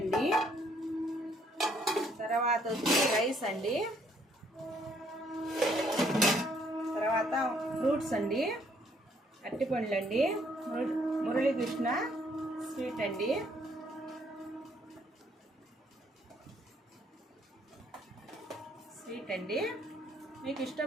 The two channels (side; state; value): both; normal; correlation 0.67